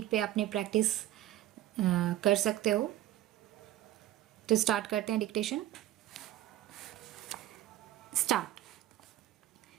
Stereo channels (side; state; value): left; quieter; 13.8 dB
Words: पे अपने प्रैक्टिस कर सकते हो। तो स्टार्ट करते हैं dictation. Start.